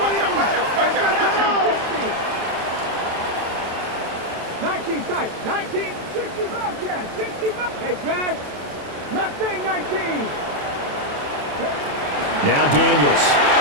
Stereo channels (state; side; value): late; left; 27 ms